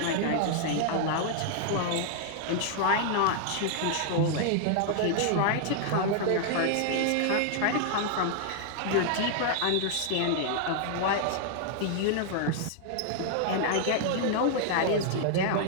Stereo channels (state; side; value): different; both; correlation 0.00